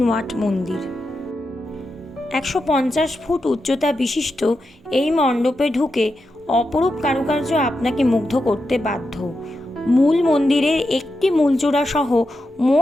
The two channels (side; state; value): both; normal; correlation 0.88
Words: ওয়াট মন্দির। ১৫০ ফুট উচ্চতা বিশিষ্ট এই মণ্ডপে ঢুকে অপরূপ কারুকার্য আপনাকে মুগ্ধ করতে বাধ্য। মূল মন্দিরের একটি মূল চূড়া সহ